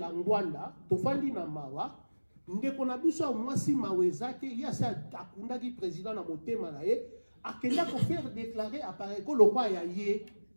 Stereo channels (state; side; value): inverted; both; correlation -1.00